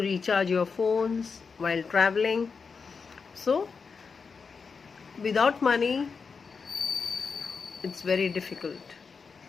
your phones while traveling. So without money, it's very difficult.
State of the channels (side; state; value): right; quieter; 5.2 dB